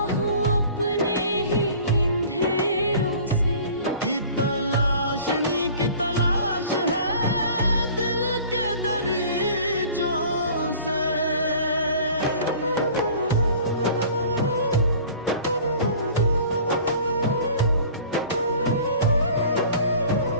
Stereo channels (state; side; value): inverted; both; correlation -0.47